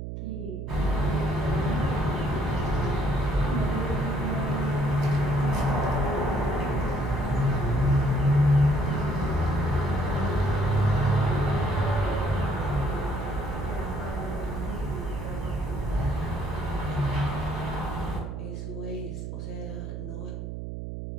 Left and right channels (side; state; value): right; noise; hum, 7 dB below the sound